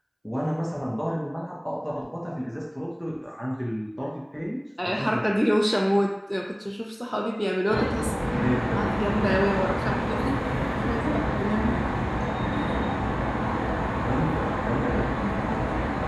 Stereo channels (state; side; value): identical; both; correlation 1.00